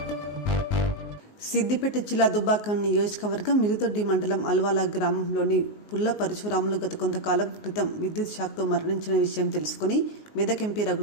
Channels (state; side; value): late; right; 19 ms